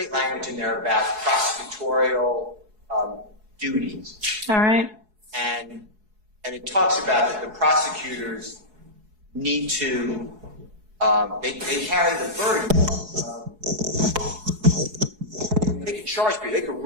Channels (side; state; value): left; late; 4.7 ms